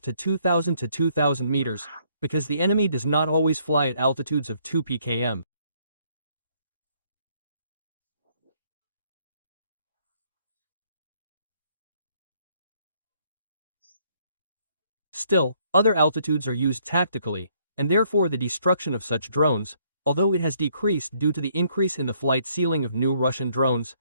to 2,000 to 2,000 meters, because the enemy does not always fly at altitudes of 2 pkm. Still, other altitudes are used tactically, and therefore the destruction of such drones, although it has decreased due to the increase in the flight ceiling of new Russian drones,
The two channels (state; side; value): inverted; both; correlation -0.68